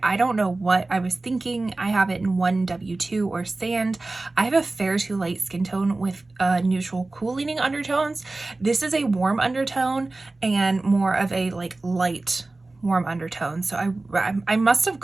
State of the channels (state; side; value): quieter; left; 3.2 dB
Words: I don't know what I was thinking. I have it in 1W2 or Sand. I have a fair to light skin tone with neutral cool leaning undertones. This is a warm undertone and more of a like light warm undertone. So I must have